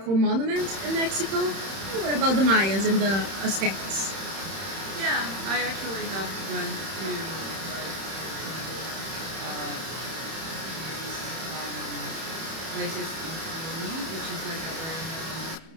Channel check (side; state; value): left; late; 31 ms